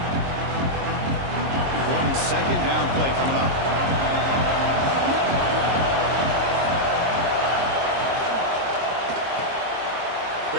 Second down play coming up.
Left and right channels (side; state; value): left; late; 22 ms